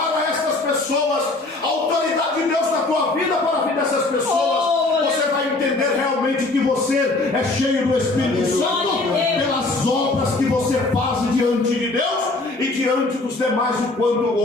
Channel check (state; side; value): quieter; right; 3.1 dB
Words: a estas pessoas a autoridade de Deus na tua vida, para a vida dessas pessoas, você vai entender realmente que você é cheio do Espírito Santo pelas obras que você faz diante de Deus e diante dos demais o quanto